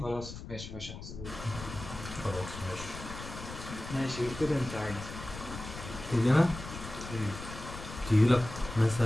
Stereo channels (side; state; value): left; noise; rumble, 11 dB below the sound